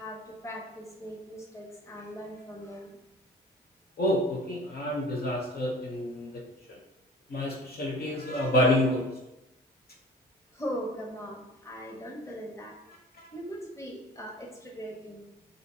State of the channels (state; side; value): normal; both; correlation 0.44